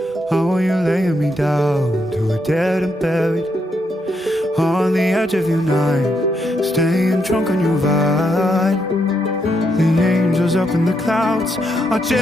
How are you laying me down to a dead and buried on the edge of your night, staying drunk on your vine. The angels up in the clouds are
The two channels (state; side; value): normal; both; correlation 0.79